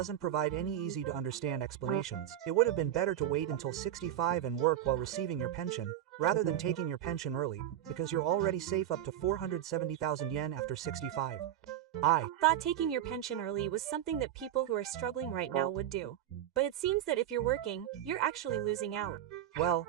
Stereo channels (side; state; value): left; quieter; 11.4 dB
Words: provide any easy-to-understand explanations. It would have been better to wait until 65 and work while receiving your pension, rather than taking your pension early, because you're already safe up to 470,000 yen after 65. I thought taking your pension early was something that people who are struggling right now would do. But it seems that if you're working, you're actually losing out. Well,